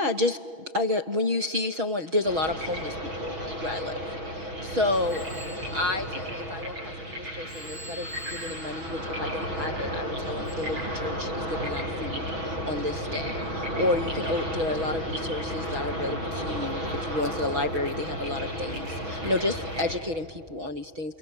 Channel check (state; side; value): late; left; 6.2 ms